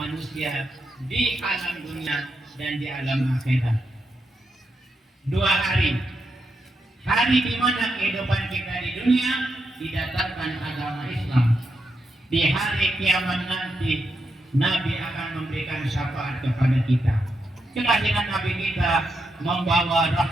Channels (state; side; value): normal; both; correlation 0.84